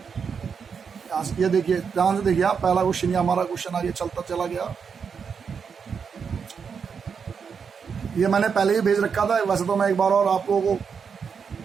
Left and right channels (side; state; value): left; quieter; 6.3 dB